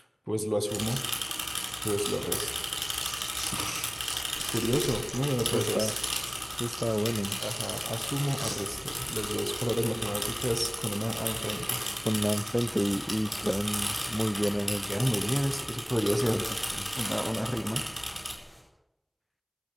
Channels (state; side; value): identical; both; correlation 1.00